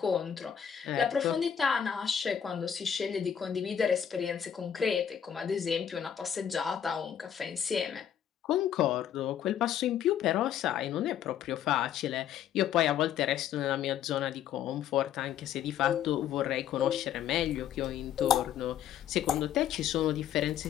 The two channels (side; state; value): right; quieter; 9.3 dB